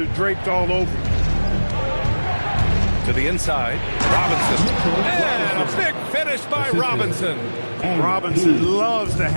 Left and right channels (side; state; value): both; inverted; correlation -1.00